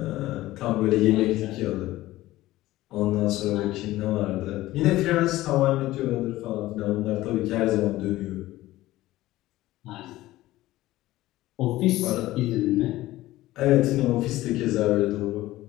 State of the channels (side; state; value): right; quieter; 16.6 dB